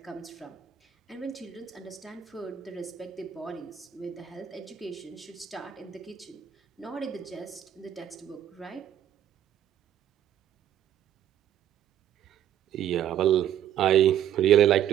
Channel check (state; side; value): quieter; left; 10.5 dB